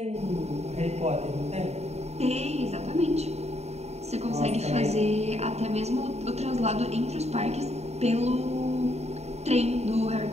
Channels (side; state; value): left; late; 0.31 ms